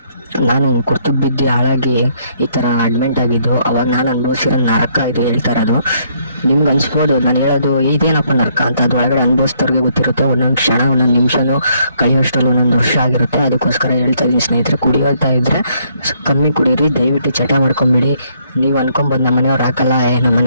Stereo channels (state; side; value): inverted; both; correlation -0.69